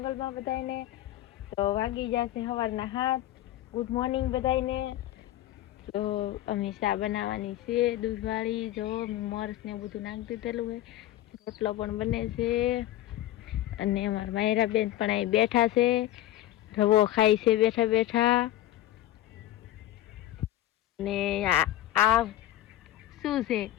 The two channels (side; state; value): right; quieter; 14.2 dB